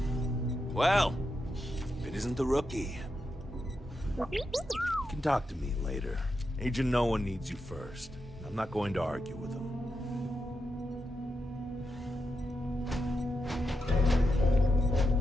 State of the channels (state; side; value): normal; both; correlation 0.86